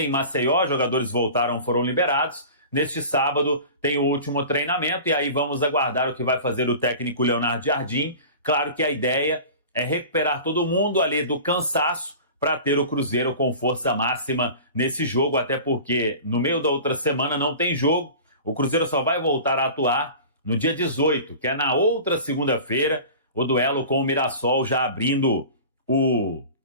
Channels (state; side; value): inverted; both; correlation -0.38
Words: Maceió, jogadores voltaram, foram liberados. Neste sábado tem o último treinamento e aí vamos aguardar o que vai fazer o técnico Leonardo Jardim. Claro que a ideia é recuperar todo mundo ali do cansaço para ter o Cruzeiro com força máxima nesse jogo, até porque no meio da outra semana não tem jogo. O Cruzeiro só vai voltar a atuar no dia 18, que é na outra segunda-feira, o duelo com o Mirassol, já abrindo o